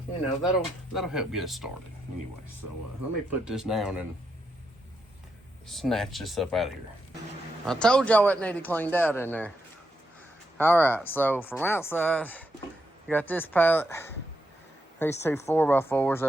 know, that'll help get us started anyway. So let me put this down and snatch this up out of here. I told y'all it needed cleaned out in there. All right, so from outside, you got this pallet, these 2 4x4s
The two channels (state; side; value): normal; both; correlation 0.82